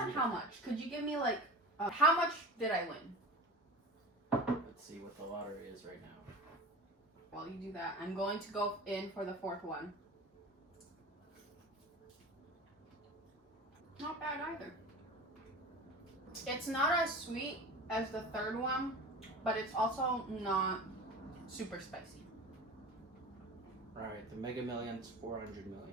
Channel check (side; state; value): both; normal; correlation 0.33